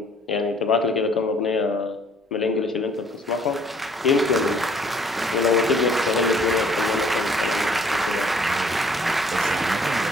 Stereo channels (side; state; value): both; normal; correlation 0.59